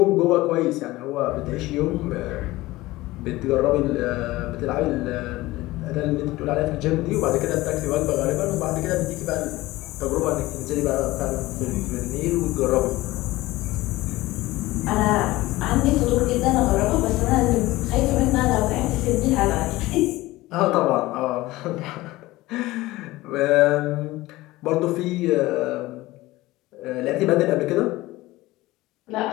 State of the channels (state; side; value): quieter; right; 18.6 dB